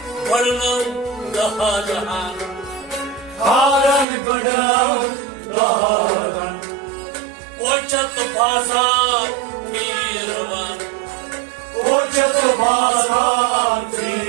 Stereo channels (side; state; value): left; drops out; at 4.0 s